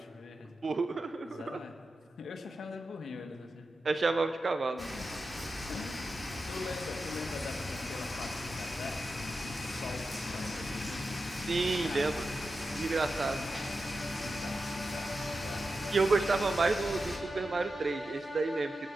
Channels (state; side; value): normal; both; correlation 0.91